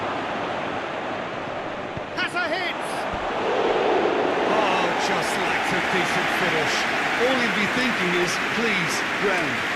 Has a hit! Oh, just lacked a decent finish. All he'd be thinking is, please, ground,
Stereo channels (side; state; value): both; identical; correlation 1.00